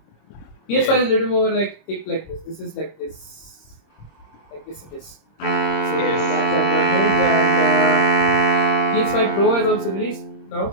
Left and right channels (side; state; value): right; late; 26 ms